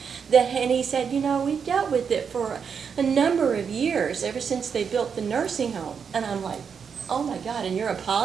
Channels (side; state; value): left; quieter; 6.6 dB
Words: and he said, you know, we've dealt with it for a number of years, ever since they built the nursing home. And I'm like, oh my God, and you're